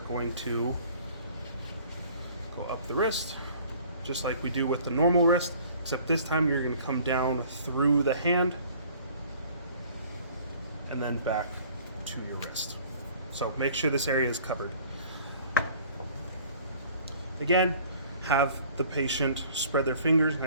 going to go up the wrist, just like we do with the normal wrist, except this time you're going to come down through the hand and then back to your wrist. So make sure this area is covered. Again, have the patient spread their fingers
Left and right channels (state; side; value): inverted; both; correlation -0.52